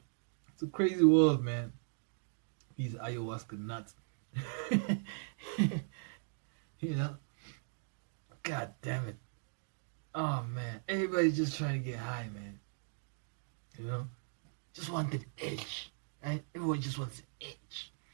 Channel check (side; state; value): left; silent; digital silence